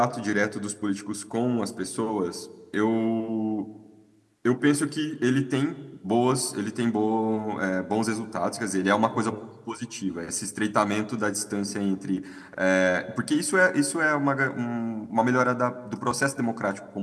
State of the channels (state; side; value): identical; both; correlation 1.00